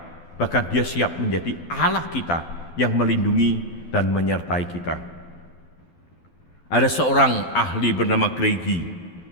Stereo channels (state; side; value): late; right; 12 ms